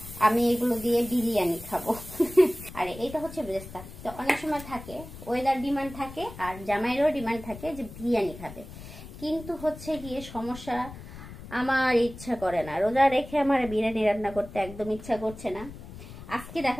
আমি এগুলো দিয়ে বিরিয়ানি খাবো। আর এইটা হচ্ছে বেরেস্তা। তো অনেক সময় থাকে ওয়েদার ডিমান্ড থাকে আর জামাইয়েরও ডিমান্ড থাকে যে বিরিয়ানি খাবে, কিন্তু হচ্ছে গিয়ে সমস্যা, আমার ইচ্ছা করে না, রোজা রেখে আমার বিরিয়ানি রান্না করতে একদম ইচ্ছা করছে না। আজকে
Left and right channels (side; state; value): left; noise; rumble, 14 dB below the sound